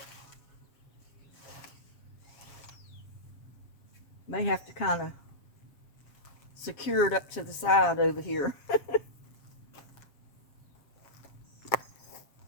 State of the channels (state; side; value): late; right; 7.3 ms